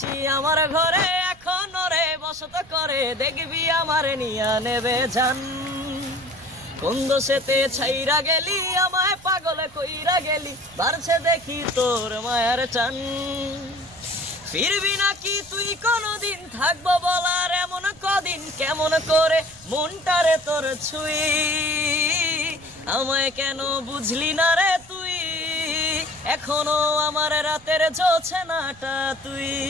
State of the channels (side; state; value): right; noise; rumble, 25 dB below the sound